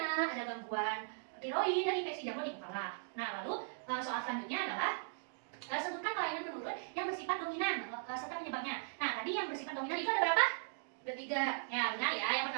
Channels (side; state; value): left; silent; digital silence